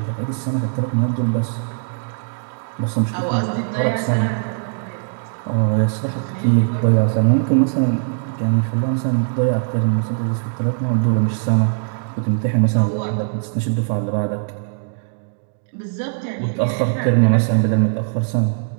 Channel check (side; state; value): left; silent; digital silence